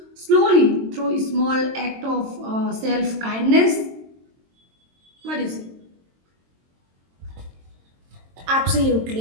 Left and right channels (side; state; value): left; late; 22 ms